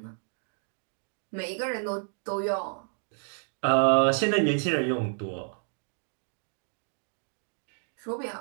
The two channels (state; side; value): silent; left; 58 dB below the other